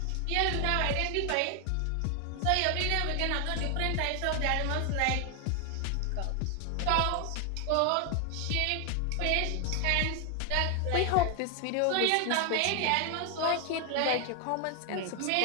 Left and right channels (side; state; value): both; different; correlation 0.00